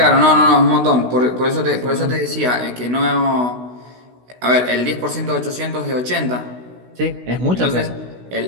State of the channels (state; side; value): late; left; 16 ms